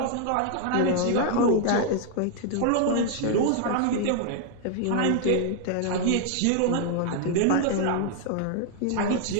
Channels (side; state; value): both; different; correlation 0.00